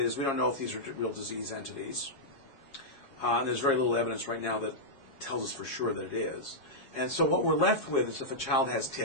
we don't know if these are real disease entities. And there's very little evidence right now that tells us for sure that it is. And so what we're left with is if a child has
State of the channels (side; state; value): right; late; 7.3 ms